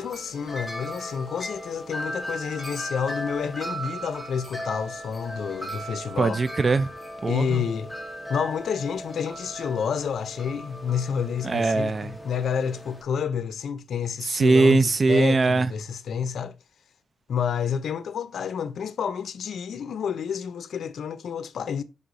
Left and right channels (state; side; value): normal; both; correlation 0.81